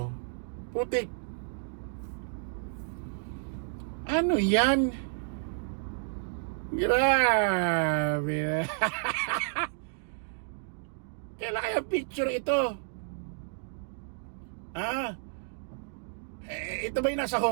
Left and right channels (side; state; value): left; silent; digital silence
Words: Putik. Ano yan? Grabe. Kailan kaya picture ito? Ito ba yung nasa